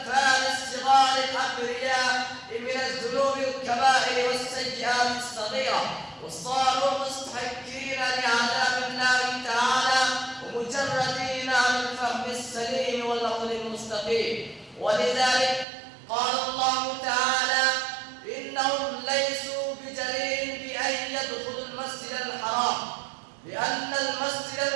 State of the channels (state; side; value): drops out; left; at 15.7 s